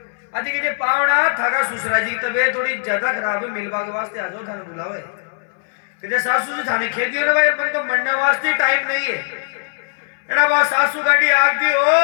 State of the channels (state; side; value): silent; right; 65 dB below the other